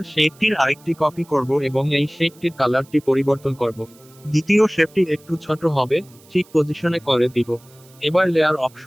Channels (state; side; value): noise; right; hiss, 27 dB below the sound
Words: শেপটির আরেকটি কপি করব এবং এই শেপটির কালারটি পরিবর্তন করব। দ্বিতীয় শেপটি একটু ছোট হবে, ঠিক পজিশনে করে দিব। এবার লেয়ার